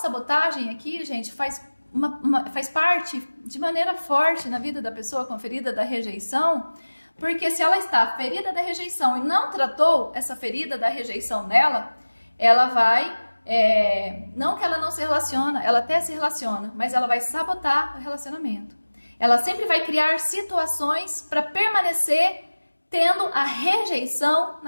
aqui, gente, faz parte de maneira forte na vida da pessoa com ferida da rejeição, porque se ela está ferida da rejeição e não tratou essa ferida da rejeição nela, ela vai, não que ela não se relaciona, ela até se relaciona, mas ela vai sabotar o relacionamento. Ela sempre vai criar situações para permanecer tendo a rejeição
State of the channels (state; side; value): inverted; both; correlation -1.00